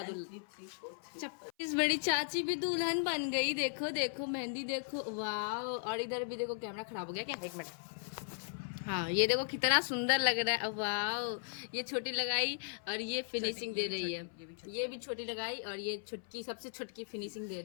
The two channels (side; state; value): right; silent; 53 dB below the other